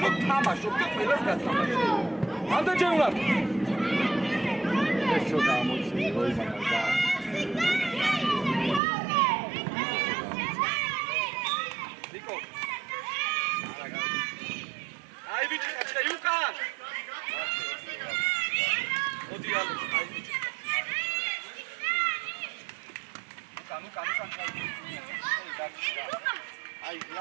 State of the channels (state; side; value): drops out; left; at 8.8 s